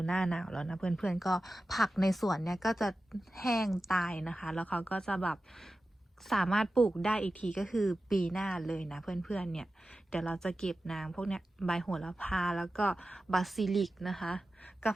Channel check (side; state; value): both; normal; correlation 0.94